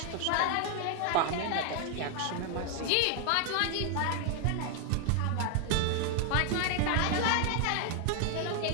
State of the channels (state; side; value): different; both; correlation 0.00